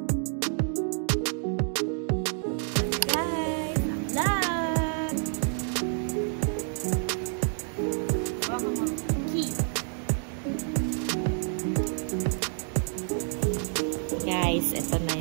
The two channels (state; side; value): silent; left; 59 dB below the other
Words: Guys, ito na